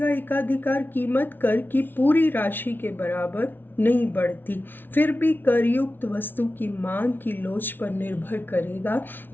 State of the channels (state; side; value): late; right; 0.097 ms